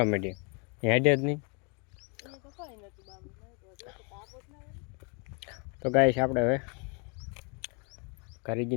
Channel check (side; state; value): right; quieter; 34.5 dB